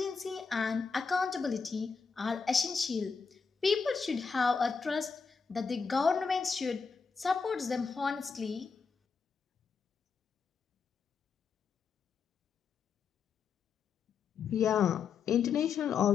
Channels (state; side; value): quieter; right; 5.6 dB